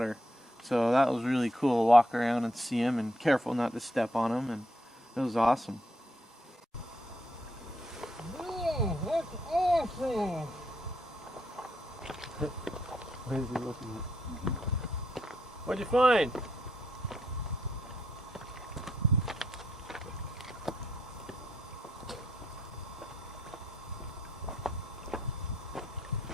So that was really cool to walk around and see them, and careful not to step on them, and it was awesome. Oh, that's awesome! What is he looking at? What'd you find?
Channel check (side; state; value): both; normal; correlation 0.76